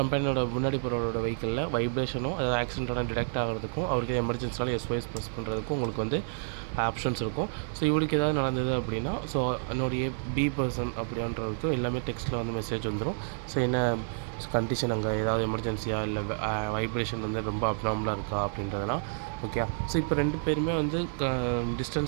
முன்னாடி போகிறவரோட வெஹிக்கிளில் வைப்ரேஷனும் அதாவது ஆக்சிடென்ட்டோட டிடெக்ட் ஆகிறதுக்கும் அவருக்கு எமர்ஜென்சினால SOS ப்ரெஸ் பண்ணுறதுக்கும் உங்களுக்கு வந்து ஆப்ஷன்ஸ் இருக்கும். ஸோ இவருக்கு ஏதாவது நடந்தது அப்படின்னா, ஸோ என்னுடைய பி பர்சன் அப்படின்றதுக்கு எல்லாமே டெக்ஸ்ட்டில் வந்து மெசேஜ் வந்துடும். ஸோ என்ன கண்டிஷன், அங்கே ஏதாவது எமர்ஜென்சியாக, இல்லை வைப்ரேஷன் வந்து ரொம்ப அப்நார்மலாக இருக்கா அப்படின்றதெல்லாம். ஓகே, ஸோ இப்போ 2 பேருமே வந்து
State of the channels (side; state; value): left; silent; digital silence